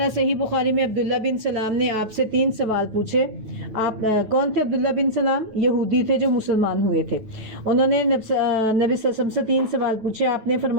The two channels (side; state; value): left; late; 9.2 ms